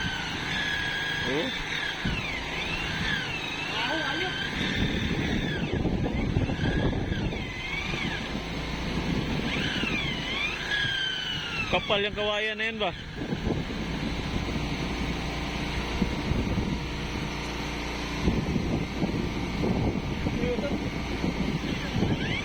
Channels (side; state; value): both; identical; correlation 1.00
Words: Oh. Ayok. Kapal yung kawayan na yun ba?